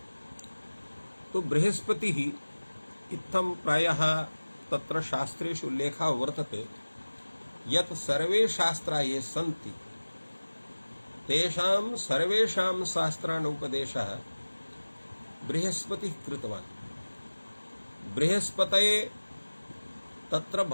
तो बृहस्पतिः इत्थं प्रायः तत्र शास्त्रेषु उल्लेखः वर्तते यत् सर्वे शास्त्राः ये सन्ति तेषां सर्वेषां शास्त्राणाम् उपदेशः बृहस्पतिः कृतवान्। बृहस्पतये तत्र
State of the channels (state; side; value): inverted; both; correlation -1.00